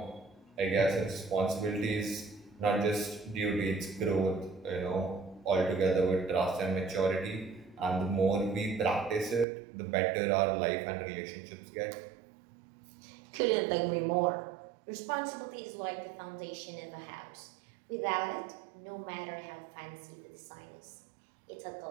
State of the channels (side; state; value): left; drops out; at 9.5 s